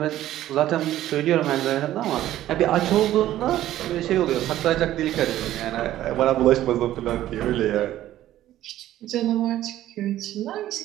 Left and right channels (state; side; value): quieter; left; 13.5 dB